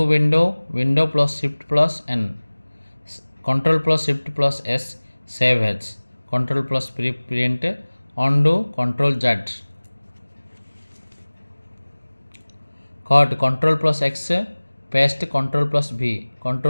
window plus shift plus N control plus shift plus S save as control plus print undo control Z cut control plus X paste control plus V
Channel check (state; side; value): inverted; both; correlation -1.00